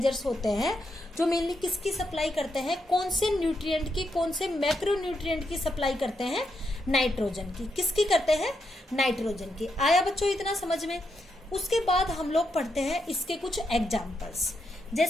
होते हैं जो मेनली किसकी सप्लाई करते हैं? कौन से न्यूट्रिएंट की, कौन से मैक्रोन्यूट्रिएंट की सप्लाई करते हैं? नाइट्रोजन की। किसकी करते हैं? नाइट्रोजन की। आया बच्चों इतना समझ में? उसके बाद हम लोग पढ़ते हैं इसके कुछ एग्जाम्पल्स।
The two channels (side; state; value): both; normal; correlation 0.82